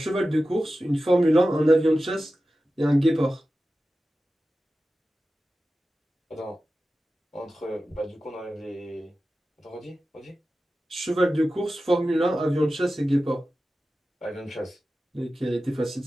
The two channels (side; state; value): both; normal; correlation 0.94